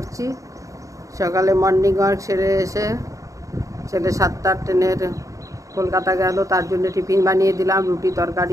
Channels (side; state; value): left; late; 0.16 ms